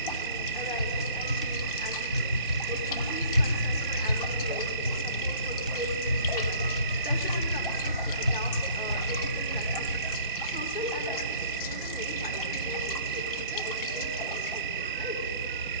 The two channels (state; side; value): inverted; both; correlation -0.50